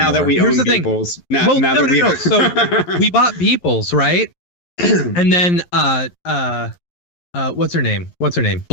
that we own Beeples. No. So we bought Beeples, right? And then what's her name?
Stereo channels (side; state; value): right; late; 11 ms